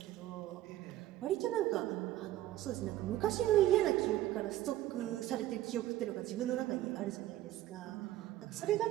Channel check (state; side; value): quieter; left; 14.5 dB